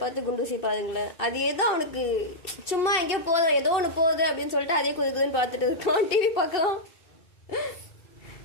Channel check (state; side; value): late; right; 2.7 ms